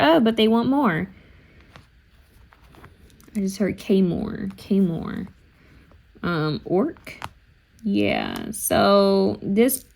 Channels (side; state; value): both; identical; correlation 1.00